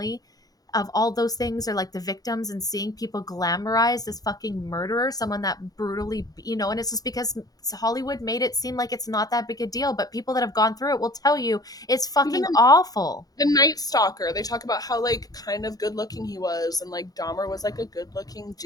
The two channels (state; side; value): late; right; 0.18 ms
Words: of all those things or like the victims and seeing people glamorize this fucking murderer, someone that brutally, and it's just because Hollywood made it seem like it's not that big a deal, but people that have gone through it will tell you it's even fucking awful. the Night Stalker, they talk about how like kind of good looking he was, and like Dahmer was like a good looking